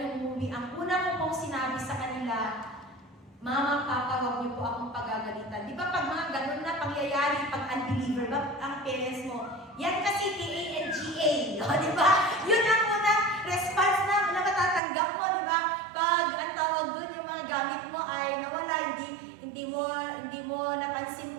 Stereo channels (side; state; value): left; drops out; at 14.8 s